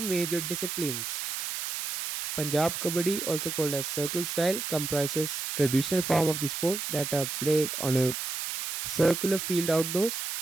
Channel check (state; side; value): noise; right; hiss, 4 dB below the sound